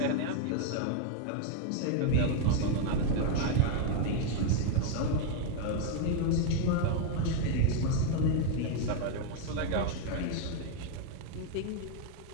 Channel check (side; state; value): both; different; correlation 0.01